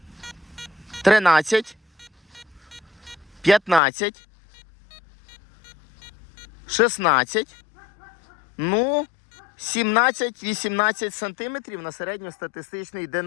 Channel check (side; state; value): right; drops out; at 3.8 s